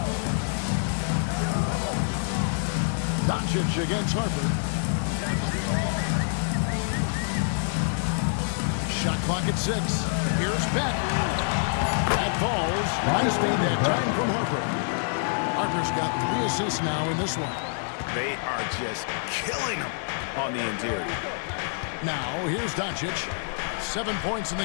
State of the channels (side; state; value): right; silent; 55 dB below the other